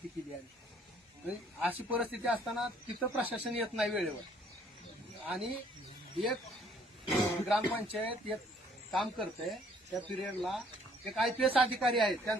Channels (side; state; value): both; normal; correlation 0.61